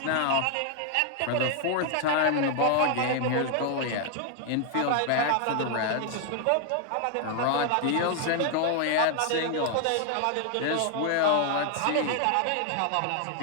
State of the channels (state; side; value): different; both; correlation 0.00